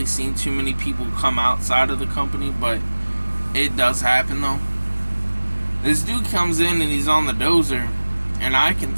seen too many people come outside of the company, but it does happen though. This dude comes in and he's on the dozer, and I can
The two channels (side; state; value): both; inverted; correlation -1.00